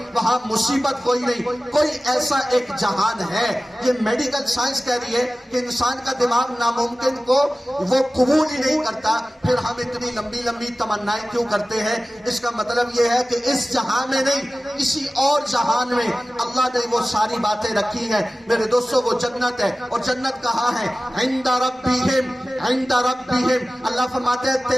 وہاں مصیبت کوئی نہیں۔ کوئی ایسا ایک جہان ہے۔ یہ میڈیکل سائنس کہہ رہی ہے کہ انسان کا دماغ ناممکن کو وہ قبول ہی نہیں کرتا، پھر ہم اتنی لمبی لمبی تمنائیں کیوں کرتے ہیں؟ اس کا مطلب یہ ہے کہ اس جہان میں نہیں، کسی اور جہان میں اللہ نے وہ ساری باتیں رکھی ہیں۔ میرے دوستو وہ جنت ہے، اور جنت کہاں ہے؟ عند ربہم، عند ربہم۔ اللہ فرماتے ہیں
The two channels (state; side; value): normal; both; correlation 0.97